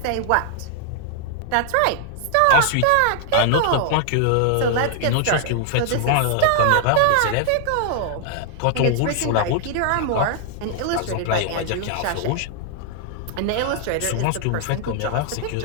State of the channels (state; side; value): different; both; correlation 0.00